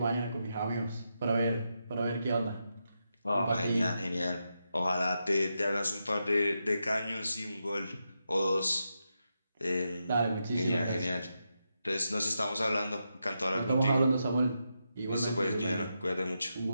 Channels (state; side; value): inverted; both; correlation -0.86